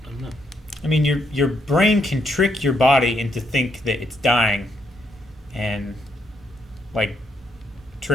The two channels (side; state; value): both; normal; correlation 0.75